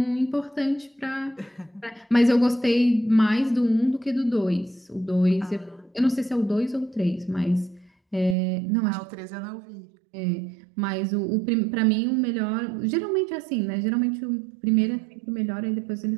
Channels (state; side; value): drops out; left; at 8.3 s